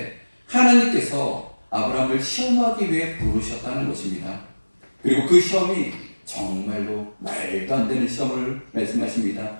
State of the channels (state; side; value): inverted; both; correlation -1.00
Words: 하나님께서 아브라함을 시험하기 위해 부르셨다는 것입니다. 그리고 그 시험이 정말로 말도 안 되는 시험을 말씀하십니다.